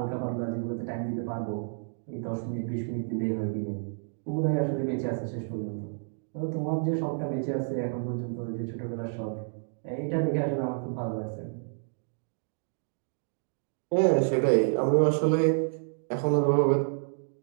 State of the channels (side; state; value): left; silent; digital silence